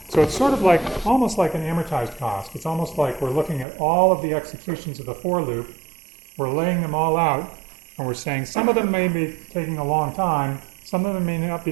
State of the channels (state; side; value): drops out; left; at 3.7 s